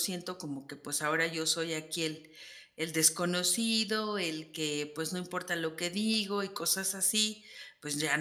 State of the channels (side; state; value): both; identical; correlation 1.00